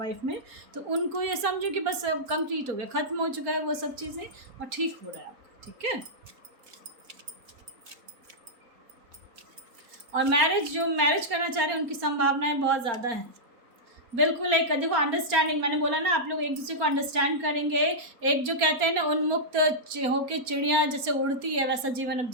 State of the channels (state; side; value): late; left; 4.3 ms